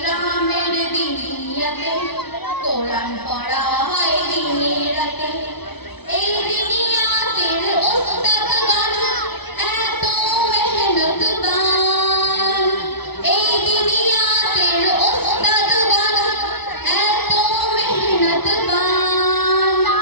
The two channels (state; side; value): late; right; 0.99 ms